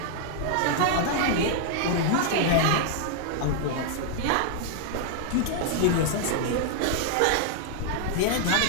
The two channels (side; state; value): both; different; correlation -0.01